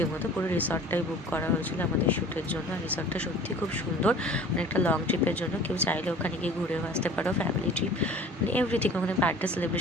পুরো রিসর্টটাই বুক করা হয়েছিল আমাদের শ্যুটের জন্য, আর রিসর্টটা সত্যি খুব সুন্দর, অনেকটা লং ট্রিপের জন্য কেউ চাইলে ওখানে ওখানে গিয়ে ঘুরেও আসতে পারো, ফ্যামিলি ট্রিপ মানে এভরিথিং, ওখানে বার্থডে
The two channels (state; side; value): normal; both; correlation 0.45